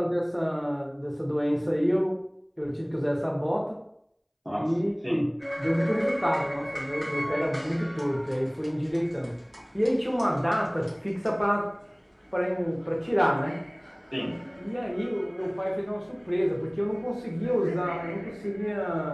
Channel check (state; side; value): identical; both; correlation 1.00